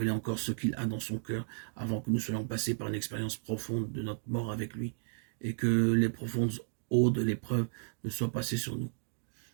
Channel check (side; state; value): left; silent; digital silence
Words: encore ce qu'il a dans son cœur avant que nous soyons passés par une expérience profonde de notre mort avec lui et que les profondes eaux de l'épreuve ne soient passées sur nous.